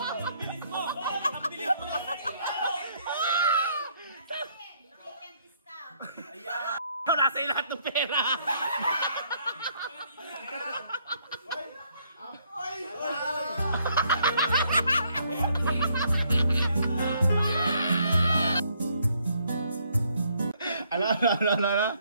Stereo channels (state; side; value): inverted; both; correlation -0.69